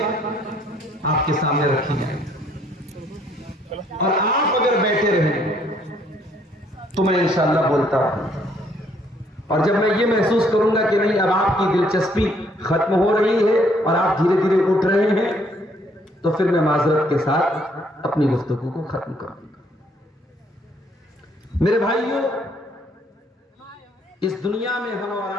आपके सामने रखी जाएंगी और आप अगर बैठे रहें तो मैं इंशाअल्लाह बोलता हूं। और जब मैं ये महसूस करूंगा कि नहीं अब आपकी दिलचस्पी खत्म हो रही है और आप धीरे धीरे उठ रहे हैं, तो फिर मैं माजरत के साथ अपनी गुफ्तगू को खत्म करूंगा। मेरे भाइयों, इस दुनिया में हम और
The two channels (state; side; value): normal; both; correlation 0.66